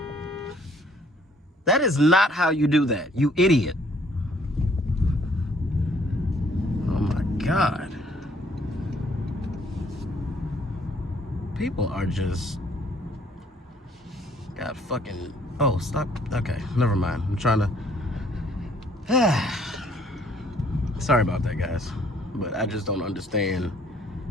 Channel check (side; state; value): both; normal; correlation 0.62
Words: That is not how you do that, you idiot. Oh my God. People are just... God fucking... Oh, stop. Okay, never mind. I'm trying to... Sorry about that, guys. But I just don't understand